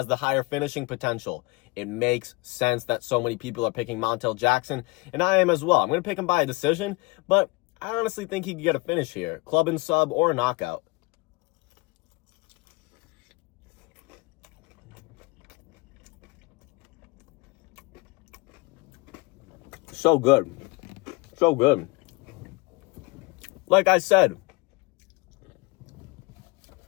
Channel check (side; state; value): right; quieter; 24.5 dB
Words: the higher finishing potential. It makes sense that so many people are picking Montel Jackson, and I am as well. I'm going to pick him by a decision, but I honestly think he could get a finish here. Club and sub or a knockout. So good. So good. Like I said,